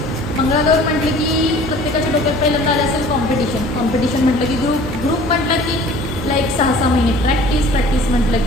मंगळागौरी म्हटलं की प्रत्येकाच्या डोक्यात पहिल्यांदा आलं असेल कॉम्पिटिशन म्हटलं की ग्रुप म्हटलं की लाईक 6-6 महिने प्रॅक्टिस म्हटलं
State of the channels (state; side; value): normal; both; correlation 0.48